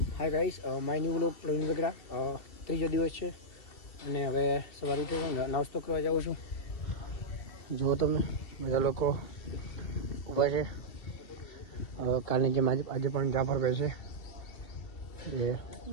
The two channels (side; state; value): right; late; 2.7 ms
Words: Hi guys, my new vlog Pravin Vegada. ત્રીજો દિવસ છે અને હવે સવારે ઉઠ્યો છું, નાસ્તો કરવા જાઉં છું. જુઓ તમે બધા લોકો ઊભા છે. કાલની જેમ આજે પણ જાફરભાઈ છે જે